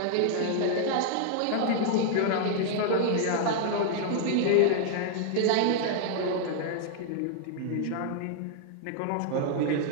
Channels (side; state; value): both; different; correlation 0.00